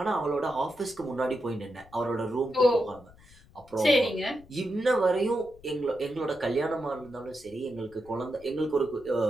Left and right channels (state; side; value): noise; left; rumble, 25 dB below the sound